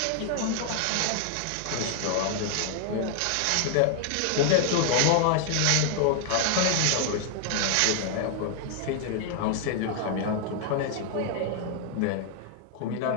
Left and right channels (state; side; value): different; both; correlation 0.00